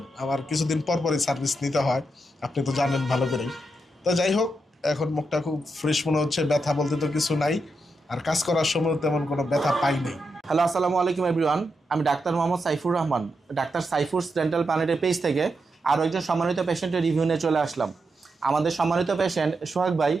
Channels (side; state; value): both; normal; correlation 0.85